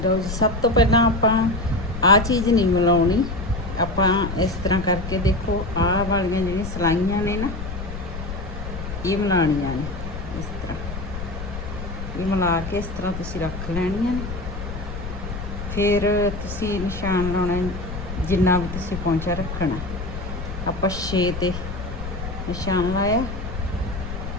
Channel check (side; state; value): left; noise; rumble, 7 dB below the sound